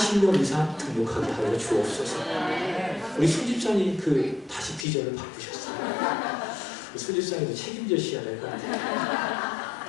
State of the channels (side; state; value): right; drops out; at 4.9 s